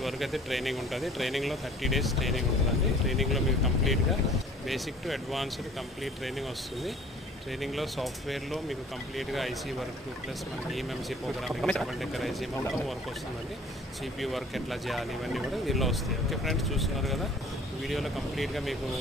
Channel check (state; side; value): normal; both; correlation 0.51